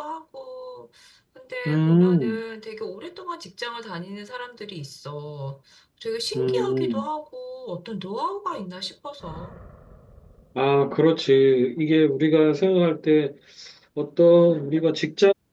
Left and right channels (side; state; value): both; identical; correlation 1.00